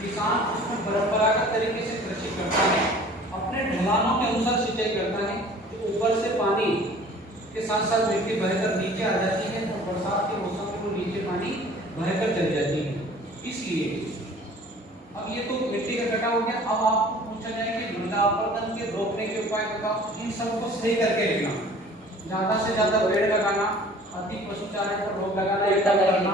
उसमें परंपरागत तरीके से कृषि करता है, अपने ढलानों के अनुसार सिंचाई करता है। तो ऊपर से पानी के साथ साथ मिट्टी बहकर नीचे आ जाती है, तो बरसात के मौसम में वो नीचे पानी बहकर चली जाती है। इसलिए अब ये तो मिट्टी का कटाव हो गया। अब आपको पूछा जाए कि मृदा अपरदन के रोकने के उपाय बताओ। इन सबको सही करके लिखना, ज्यादा से ज्यादा पेड़ लगाना, अति पशुचारण पर रोक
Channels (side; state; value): both; normal; correlation 0.48